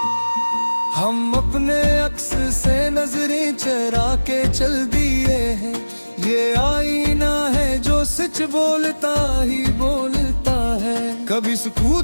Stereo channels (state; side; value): inverted; both; correlation -1.00